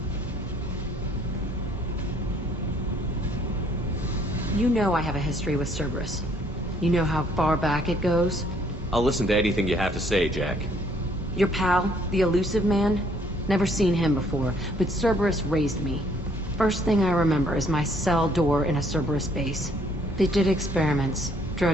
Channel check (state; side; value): normal; both; correlation 0.64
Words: You know I have a history with Cerberus. You know how far back it goes? I'll listen to anything you have to say, Jack. Your pal, the Elusive Man? Never seen him before, but Cerberus raised me. First thing I remember is my cell door in a Cerberus base. They did experiments,